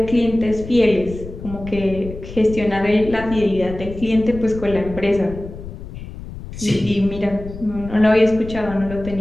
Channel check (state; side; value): noise; left; rumble, 12 dB below the sound